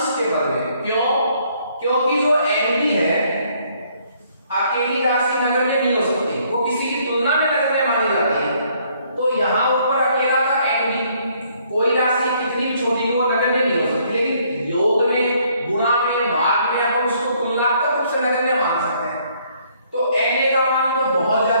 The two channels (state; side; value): inverted; both; correlation -0.66